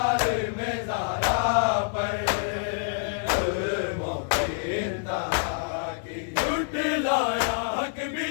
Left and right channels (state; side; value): silent; right; 56 dB below the other